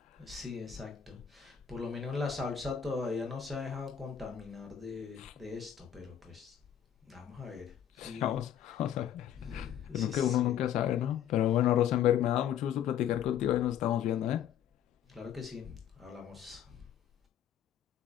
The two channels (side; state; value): right; quieter; 9.8 dB